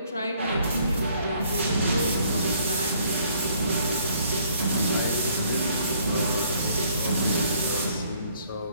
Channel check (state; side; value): inverted; both; correlation -0.63